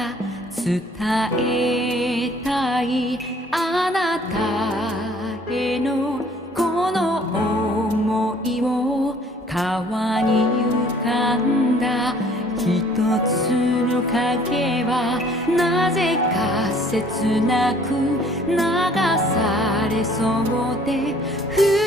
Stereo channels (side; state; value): both; normal; correlation 0.57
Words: 伝えたいあなたへのこの想いを川に浮かんだ一つの影はなぜか切なく流されそうで二